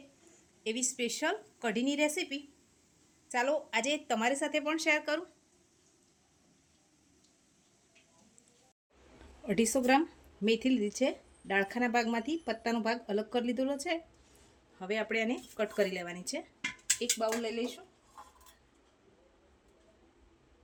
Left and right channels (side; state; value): both; identical; correlation 1.00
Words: એવી સ્પેશિયલ કઢીની રેસીપી ચાલો આજે તમારી સાથે પણ શેર કરું। 250 ગ્રામ મેથી લીધી છે। ડાળખાના ભાગમાંથી પત્તાનો ભાગ અલગ કરી લીધેલો છે। હવે આપણે આને કટ કરી લેવાની છે। એક બાઉલ લઈ લઈશું।